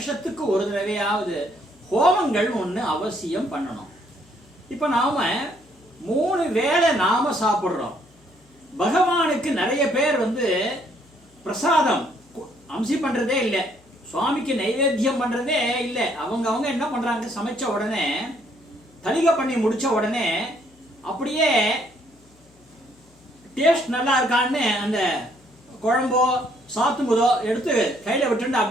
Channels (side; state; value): left; noise; hum, 30 dB below the sound